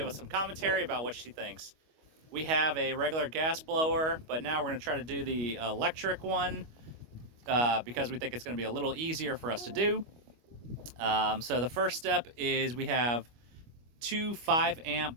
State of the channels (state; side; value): late; left; 25 ms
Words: us some commentary about what she thinks. We have a regular gas blower, but now we're going to try to do the electric one. Because we think it's going to be a little easier for us to do. So the first step is we have two